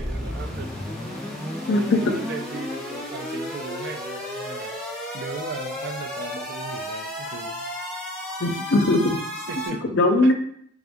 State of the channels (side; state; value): both; normal; correlation 0.49